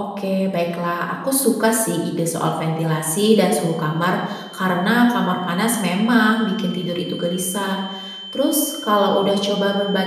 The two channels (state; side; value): identical; both; correlation 1.00